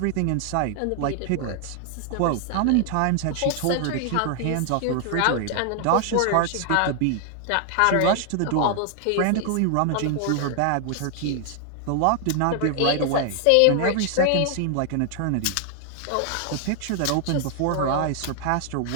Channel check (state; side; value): different; both; correlation 0.00